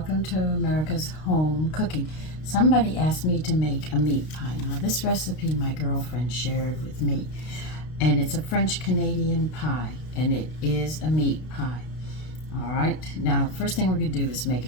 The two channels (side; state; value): right; late; 32 ms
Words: to America's Home Cooking. Somebody asked me to make a meat pie. Now this recipe my girlfriend shared with me, and it's a French Canadian pie, and it is a meat pie. All right, now first thing we're going to do is make a